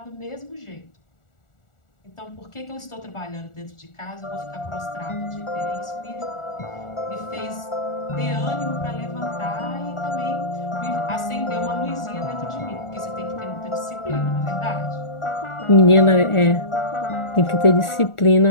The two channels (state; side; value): late; right; 1.4 ms